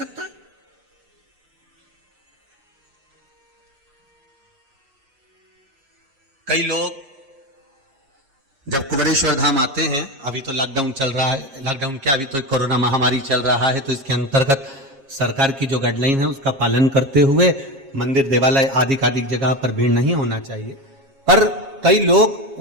है। कई लोग जब कुबेरेश्वर धाम आते हैं, अभी तो लॉकडाउन चल रहा है, लॉकडाउन क्या, अभी तो कोरोना महामारी चल रहा है, तो इसके अंतर्गत सरकार की जो गाइडलाइन है उसका पालन करते हुए मंदिर देवालय आदि जगह पर भीड़ नहीं होना चाहिए। पर कई लोग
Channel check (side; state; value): left; late; 7.4 ms